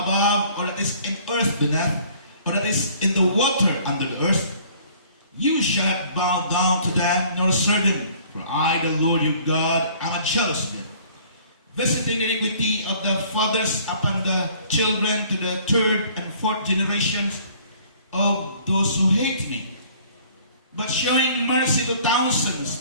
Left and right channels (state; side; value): inverted; both; correlation -0.55